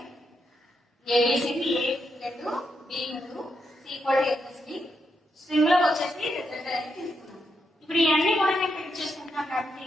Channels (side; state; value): both; normal; correlation 0.82